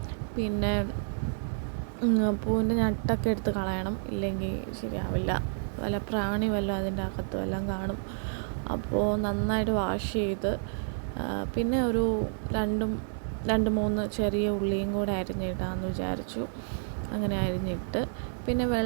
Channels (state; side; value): silent; left; digital silence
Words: പിന്നെ പൂവിൻ്റെ ഞട്ടൊക്കെ എടുത്ത് കളയണം, ഇല്ലെങ്കിൽ ശരിയാവില്ല. വല്ല പ്രാണി വല്ലതും അതിൻ്റെ അകത്തും എല്ലാം കാണും. അപ്പോൾ നന്നായിട്ട് വാഷ് ചെയ്ത് പിന്നെ ഒരു 2-3 ചെറിയ ഉള്ളിയും കൂടെ അരിഞ്ഞിടാമെന്ന് വിചാരിച്ചു. അങ്ങനെ അരിഞ്ഞിട്ട് പിന്നെ